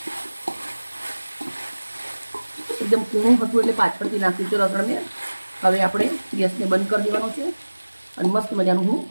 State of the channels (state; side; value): inverted; both; correlation -1.00